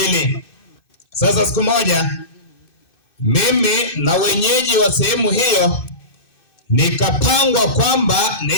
Sasa siku moja mimi na wenyeji wa sehemu hiyo nikapangwa kwamba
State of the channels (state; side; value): late; right; 2.6 ms